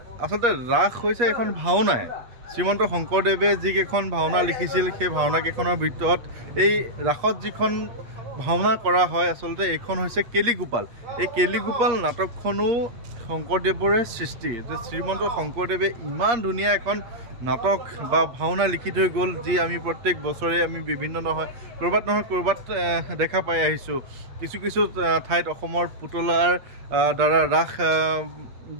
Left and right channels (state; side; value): late; left; 8.4 ms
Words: আচলতে ৰাস হৈছে এখন ভাওনাই শ্ৰীমন্ত শংকৰদেৱে যিকেইখন ভাওনা লিখিছিল সেই ভাওনাকেইখনৰ ভিতৰত এই ৰাসত যিখন ভাওনা কৰা হয় আচলতে এইখন হৈছে কেলিগোপাল এই কেলিগোপাল নাটকখনো শংকৰদেৱৰে সৃষ্টি শ্ৰীমন্ত শংকৰদেৱে ইমান ধুনীয়া এখন নাটক বা ভাওনা লিখি থৈ গ'ল যি আমি প্ৰত্যেক বছৰে আমি বিভিন্ন ক'ৰবাত দেখা পাই আহিছোঁ কিছু ঠাইত অসমৰ পুতলাৰ দ্বাৰা ৰাস